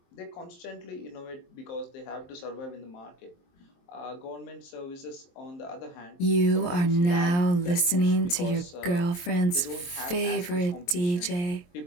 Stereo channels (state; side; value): late; right; 23 ms